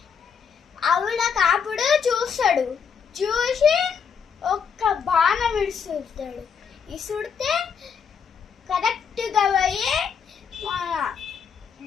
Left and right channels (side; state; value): right; quieter; 6.6 dB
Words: ఆవిడ కాపుడు చూసి ఒక్క బాణం ఇసుడితే కరెక్ట్గా పోయి మన